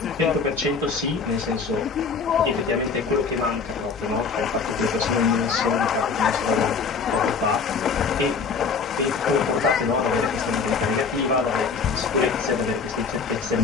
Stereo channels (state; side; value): quieter; right; 5.2 dB